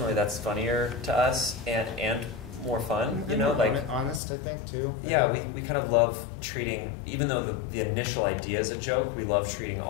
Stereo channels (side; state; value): right; drops out; at 4.2 s